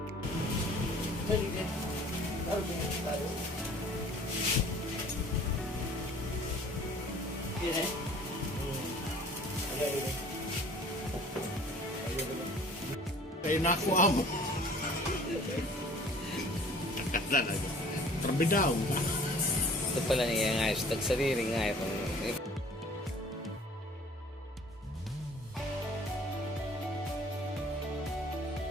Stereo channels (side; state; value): both; normal; correlation 0.50